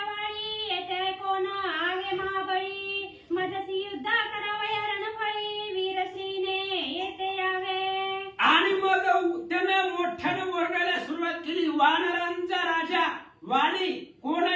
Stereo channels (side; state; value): both; identical; correlation 1.00